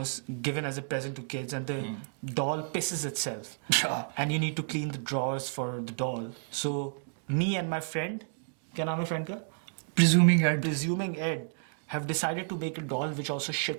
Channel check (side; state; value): left; silent; digital silence